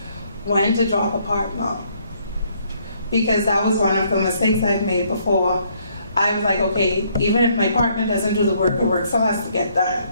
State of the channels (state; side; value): inverted; both; correlation -0.68